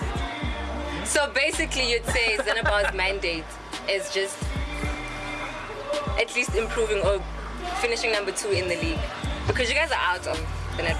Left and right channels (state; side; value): identical; both; correlation 1.00